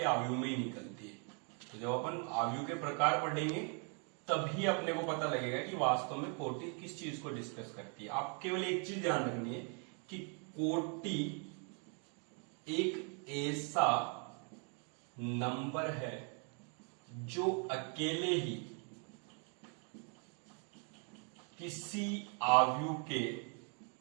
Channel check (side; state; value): left; quieter; 38.8 dB